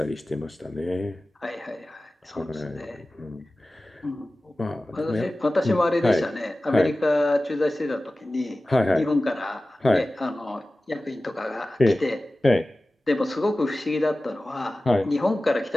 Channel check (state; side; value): normal; both; correlation 0.96